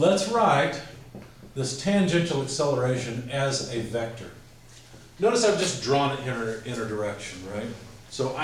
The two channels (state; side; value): identical; both; correlation 1.00